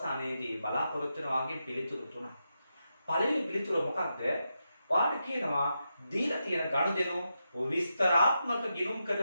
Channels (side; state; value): both; inverted; correlation -0.86